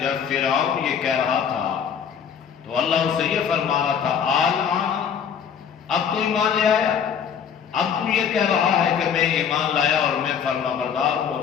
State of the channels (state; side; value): quieter; right; 7.6 dB